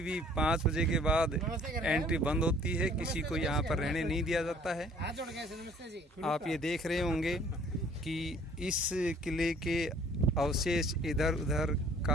भी 5 बजे के बाद एंट्री बंद होती है, किसी को यहाँ पर रहने नहीं दिया जाता है। आप ये देख रहे होंगे कि इस किले के अवशेष इधर उधर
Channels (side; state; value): both; normal; correlation 0.56